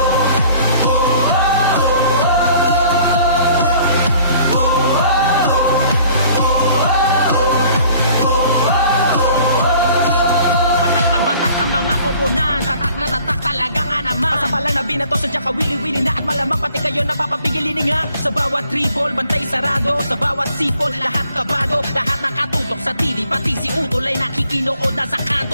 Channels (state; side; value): inverted; both; correlation -0.55